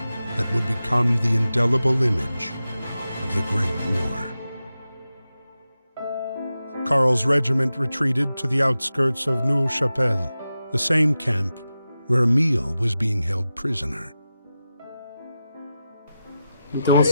that would become the indelible image of the Great War. Karl's regiment retreated to the outskirts of Neuve-Chapelle, the same camp where Emile was being held prisoner. Então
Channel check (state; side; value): inverted; both; correlation -0.92